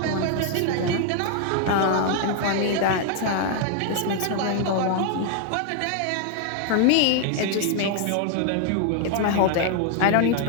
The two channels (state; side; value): different; both; correlation 0.00